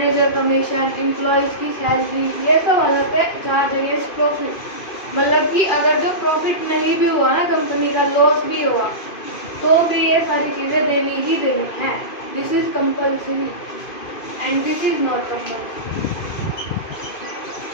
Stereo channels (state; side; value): late; right; 2.5 ms